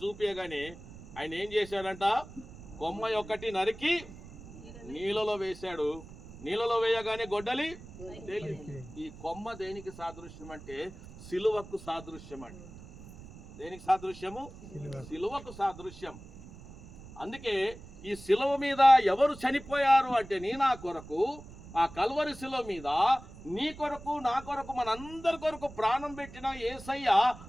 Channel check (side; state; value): right; noise; rumble, 17 dB below the sound